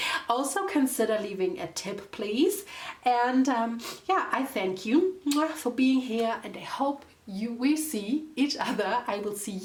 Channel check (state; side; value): identical; both; correlation 1.00